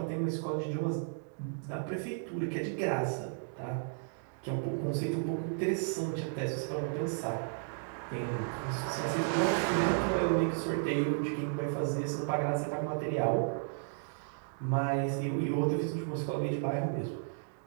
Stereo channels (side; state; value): left; silent; digital silence